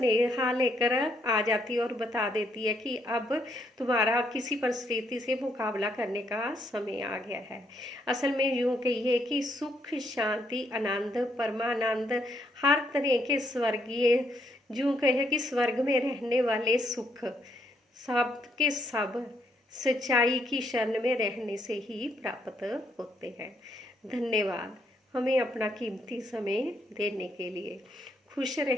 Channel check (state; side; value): normal; both; correlation 0.73